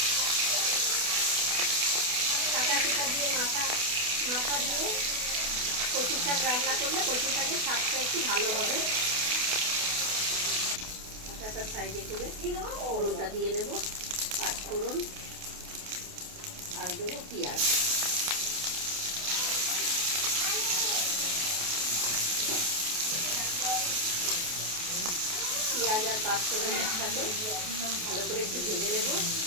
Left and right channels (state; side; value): late; left; 28 ms